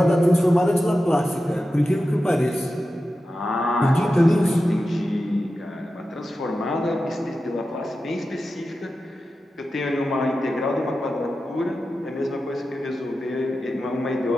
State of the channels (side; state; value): both; normal; correlation 0.92